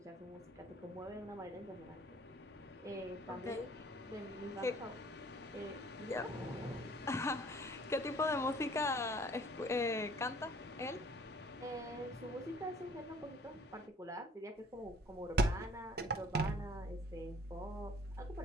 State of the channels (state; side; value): normal; both; correlation 0.53